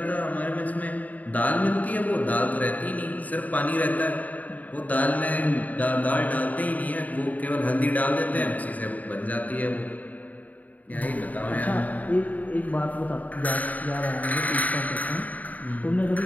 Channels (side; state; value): right; late; 0.075 ms